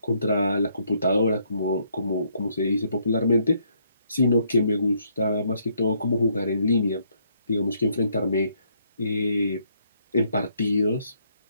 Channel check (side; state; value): both; inverted; correlation -0.71